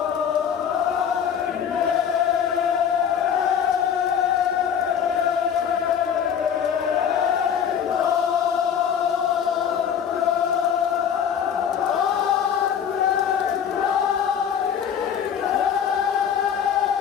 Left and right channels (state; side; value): quieter; right; 8.2 dB